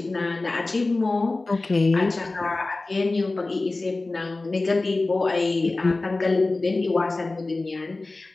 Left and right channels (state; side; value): quieter; right; 3.2 dB